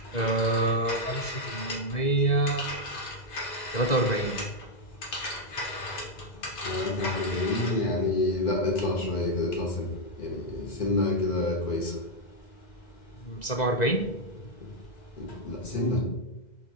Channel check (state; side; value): late; right; 2.0 ms